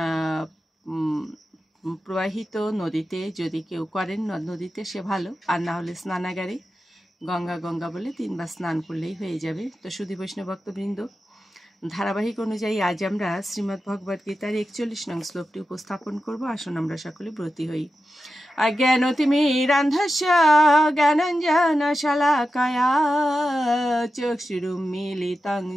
প্রবাহিত নদীতে যদি কেউ করেন নদীতে সে ভালো, আর না হলে স্নানাগারে গঙ্গা গঙ্গা বলে 3 বার স্নান করলেই হয়ে যাবে। তো সুধী বৈষ্ণব ভক্তবৃন্দ, ধারাবাহিক অনুযায়ী আজ আমরা শ্রীমদ্ ভগবদ গীতার 41 নং শ্লোকটি উপস্থাপন করব। আসুন আমরা সকলে ব্রতী হই। অজ্ঞানতিমিরান্ধস্য জ্ঞানাঞ্জন শলাকায়া চক্ষুরুন্মীলিতং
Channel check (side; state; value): both; normal; correlation 0.92